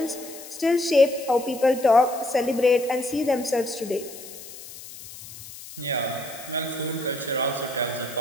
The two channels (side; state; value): left; noise; hiss, 15 dB below the sound